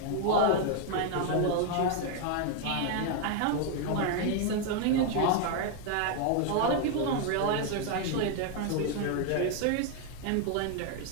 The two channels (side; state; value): both; different; correlation 0.01